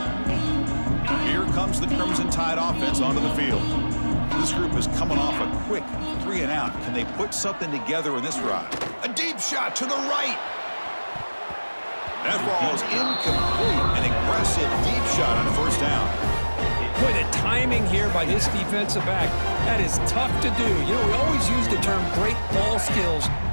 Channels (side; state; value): both; inverted; correlation -1.00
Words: Comes the Crimson Tide offense onto the field. This group is coming off a quick 3-and-out. Can they put something together in this ride? A deep shot to the right. That ball is incomplete. An aggressive deep shot on first down. Boy, the timing here by this defensive back, that is tough to do. You know, we always use the term great ball skills